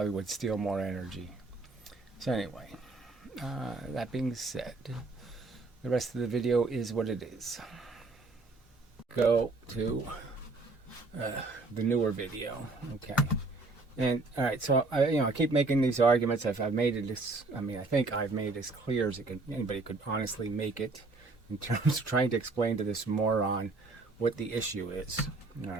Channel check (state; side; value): quieter; left; 3.4 dB